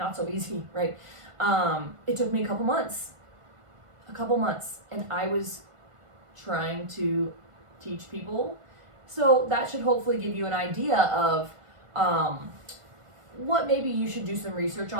so easy, right? It took me a couple months, and I was trying to teach people. So that should hopefully give you an idea of what maybe you should do some research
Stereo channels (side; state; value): left; late; 1.5 ms